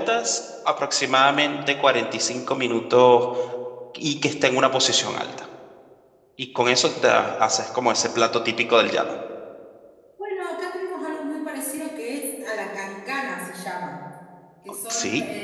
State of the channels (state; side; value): identical; both; correlation 1.00